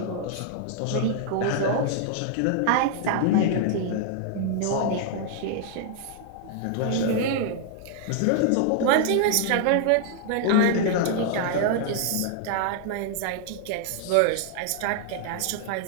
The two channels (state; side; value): different; both; correlation 0.00